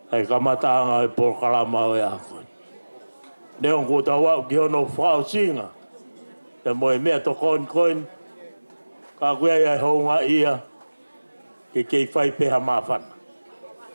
ai kamataanga e porkalama o e ako neon ko tau au ki hono whao singa e mo e mea to koin ka kuea ia honga ia ke kei whai peha mawhana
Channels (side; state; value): both; inverted; correlation -1.00